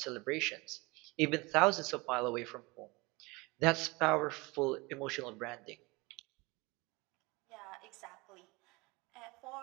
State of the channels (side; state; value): left; quieter; 24.9 dB